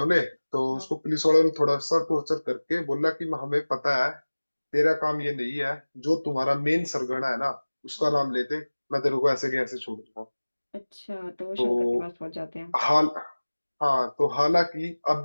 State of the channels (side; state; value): both; inverted; correlation -1.00